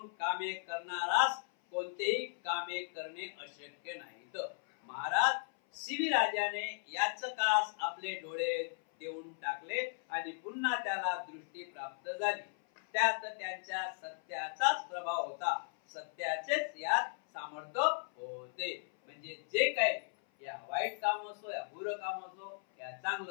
कामे करणारास कोणतेही कामे करणे अशक्य नाहीत. महाराज शिवी राजाने याचकास आपले डोळे देऊन टाकले आणि पुन्हा त्याला दृष्टी प्राप्त झाली. त्यात त्यांच्या सत्याचाच प्रभाव होता. सत्याचेच यात सामर्थ्य होते. म्हणजे जे काही या वाईट काम असो, या बुरं काम असो, या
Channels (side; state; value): right; silent; 53 dB below the other